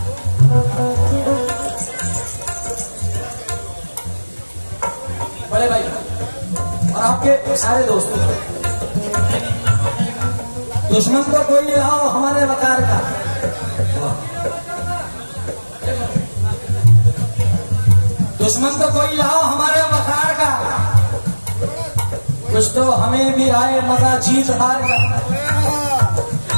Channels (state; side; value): inverted; both; correlation -1.00